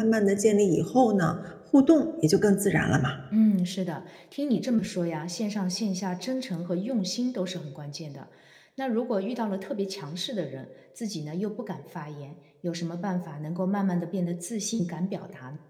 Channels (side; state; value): both; identical; correlation 1.00